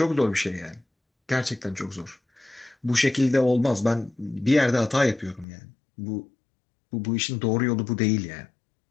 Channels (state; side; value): drops out; right; at 5.5 s